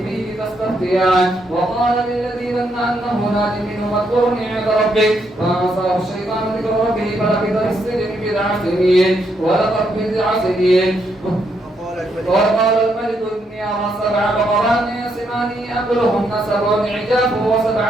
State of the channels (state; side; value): normal; both; correlation 0.77